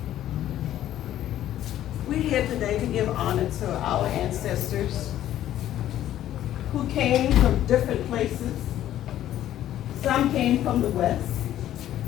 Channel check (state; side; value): quieter; right; 12.4 dB